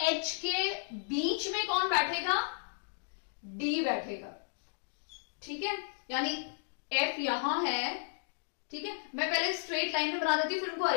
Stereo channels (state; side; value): silent; right; digital silence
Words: H के बीच में कौन बैठेगा? D बैठेगा, ठीक है। यानी F यहां है, ठीक है। मैं पहले स्ट्रेट लाइन में बना देती हूं फिर उनको